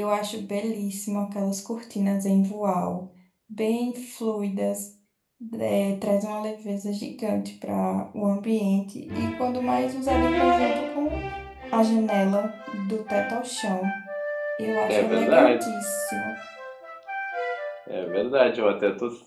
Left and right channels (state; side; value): identical; both; correlation 1.00